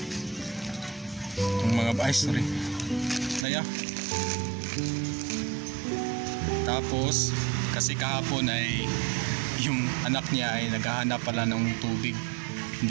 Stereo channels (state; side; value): drops out; left; at 3.5 s